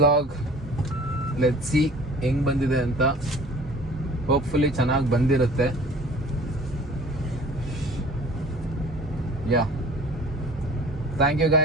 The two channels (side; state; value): both; normal; correlation 0.47